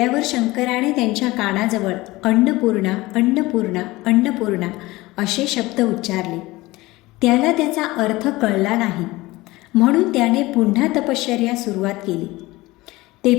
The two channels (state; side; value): quieter; right; 19.9 dB